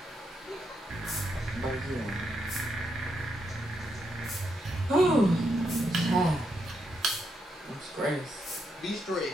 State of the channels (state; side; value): normal; both; correlation 0.81